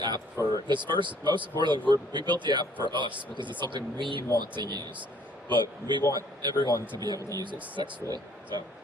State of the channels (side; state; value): both; normal; correlation 0.60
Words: app for this. First, most importantly, we built the app for us because it's something we want to use, but we want everyone to be able to use it successfully. So